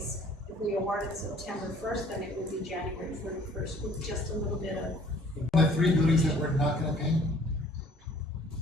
If we award it September 1st, then it will be January 31st with just a little bit of. The 3 buildings that we're not gonna paint?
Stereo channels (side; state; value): both; normal; correlation 0.55